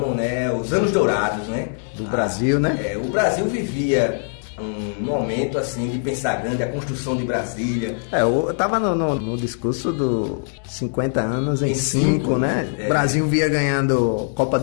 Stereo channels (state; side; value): silent; right; digital silence